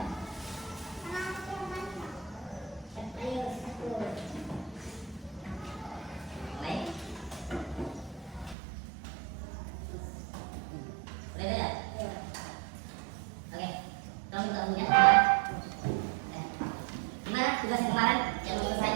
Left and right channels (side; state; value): left; drops out; at 8.6 s